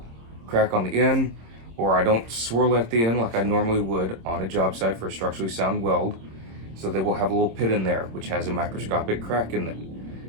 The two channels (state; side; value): late; left; 26 ms